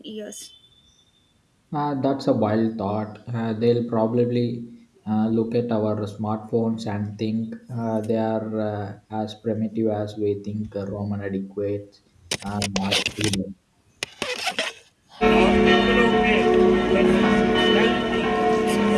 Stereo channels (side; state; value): both; identical; correlation 1.00